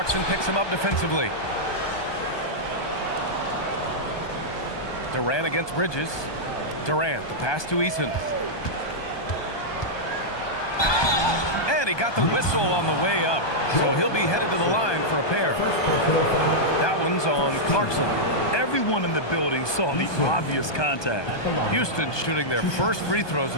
picks him up defensively. Durant against Bridges. Durant, the pass to Eason. And he got the whistle on the way up. So he'll be headed to the line for a pair. That one's on Clarkson. Everyone in the building saw the obvious contact. Houston shooting their first free throws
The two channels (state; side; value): late; right; 1.2 ms